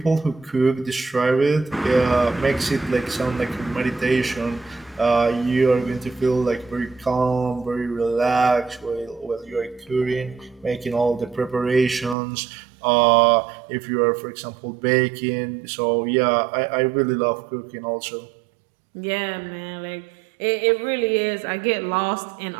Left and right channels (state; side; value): drops out; left; at 12.2 s